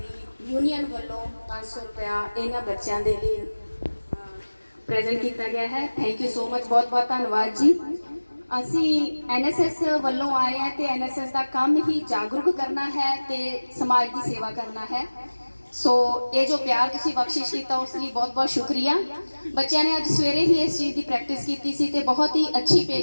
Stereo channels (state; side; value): inverted; both; correlation -1.00